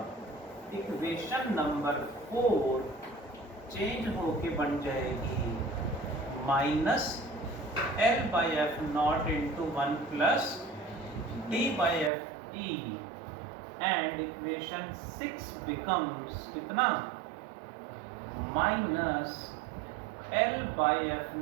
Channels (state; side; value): drops out; left; at 12.1 s